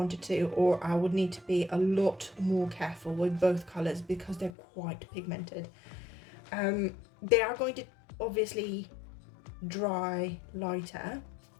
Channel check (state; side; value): drops out; right; at 4.5 s